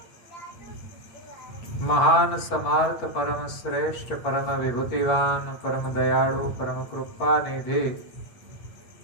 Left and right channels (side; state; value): right; late; 8.9 ms